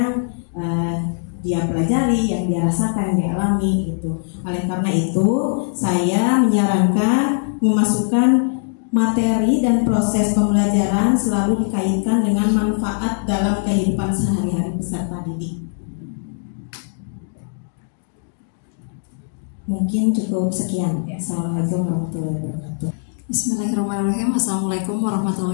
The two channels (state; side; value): silent; right; digital silence